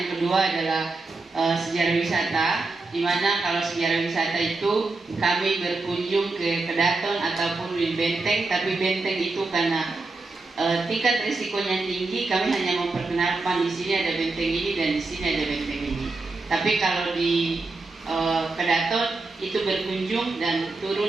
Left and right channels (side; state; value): left; quieter; 3.5 dB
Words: kedua adalah sejarah wisata, dimana kalau sejarah wisata itu kami berkunjung ke Kedaton ataupun bangunin benteng, tapi benteng itu karena tingkat risikonya tinggi, kami hanya memperkenalkan di sini ada benteng ini dan di sini ada benteng ini. Tapi kalau di Kedaton itu berkunjung dan